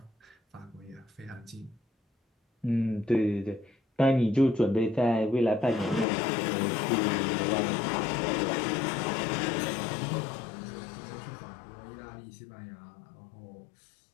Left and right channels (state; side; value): drops out; right; at 6.1 s